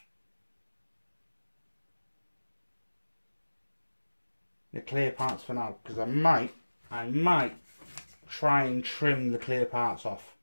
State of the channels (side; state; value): both; inverted; correlation -1.00